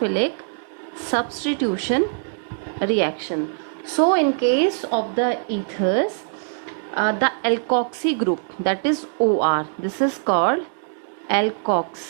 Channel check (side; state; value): left; silent; digital silence